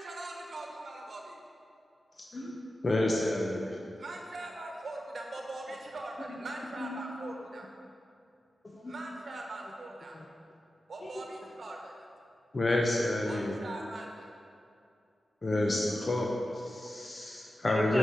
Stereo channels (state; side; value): normal; both; correlation 0.92